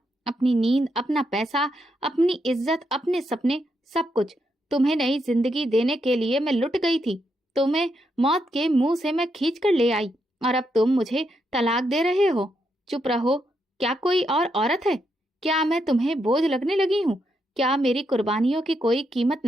अपनी नींद, अपना पैसा, अपनी इज्जत, अपने सपने, सब कुछ। तुम्हें नई जिंदगी देने के लिए मैं लुट गई थी। तुम्हें मौत के मुंह से मैं खींच कर ले आई, और अब तुम मुझे तलाक दे रहे हो। चुप रहो। क्या कोई और औरत है? क्या मैं तुम्हें बोझ लगने लगी हूँ? क्या मेरी कुर्बानियों की कोई कीमत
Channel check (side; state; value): both; normal; correlation 0.80